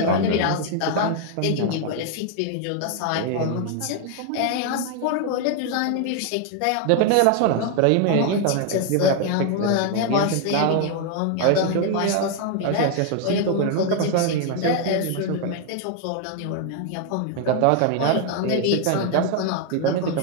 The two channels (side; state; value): both; different; correlation 0.01